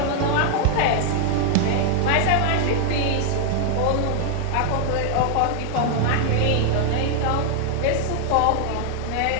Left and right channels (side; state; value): both; different; correlation 0.00